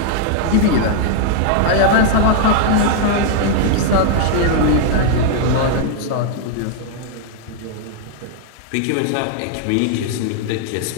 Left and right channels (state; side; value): different; both; correlation -0.01